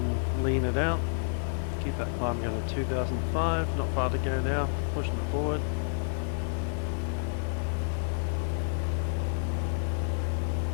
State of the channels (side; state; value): right; silent; digital silence